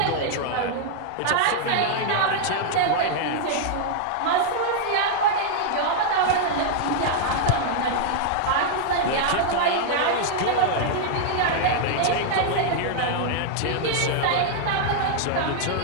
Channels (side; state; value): both; different; correlation -0.01